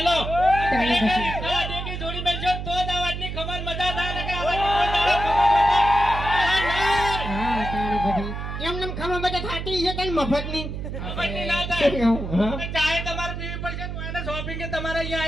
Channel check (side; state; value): right; noise; hum, 6 dB below the sound